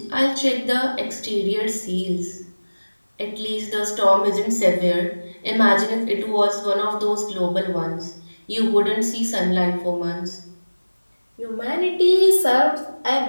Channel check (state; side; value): inverted; both; correlation -1.00